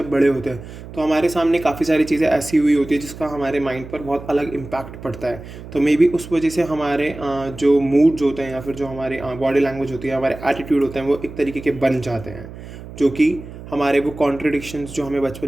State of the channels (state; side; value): noise; right; hum, 14 dB below the sound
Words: बड़े होते हैं तो हमारे सामने काफ़ी सारी चीज़ें ऐसी हुई होती है जिसका हमारे माइंड पर बहुत अलग इम्पैक्ट पड़ता है। तो मे बी उस वजह से हमारे जो मूड्स होते हैं या फिर जो हमारे बॉडी लैंग्वेज होती है, हमारे एटीट्यूड होते हैं, वो एक तरीके के बन जाते हैं, जो कि हमारे वो कॉन्ट्रडिक्शंस जो हमें